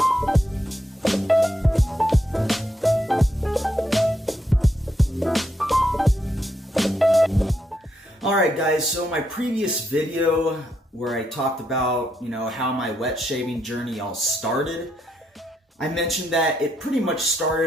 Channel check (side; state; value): both; normal; correlation 0.79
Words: Alright guys, so my previous video where I talked about, how my wet shaving journey all started, I mentioned that it pretty much